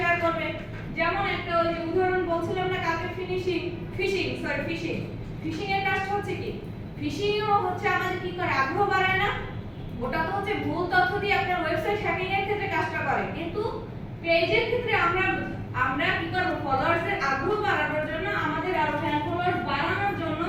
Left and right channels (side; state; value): both; identical; correlation 1.00